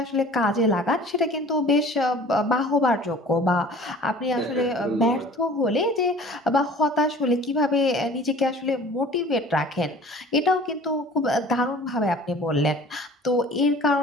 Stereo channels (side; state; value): both; normal; correlation 0.46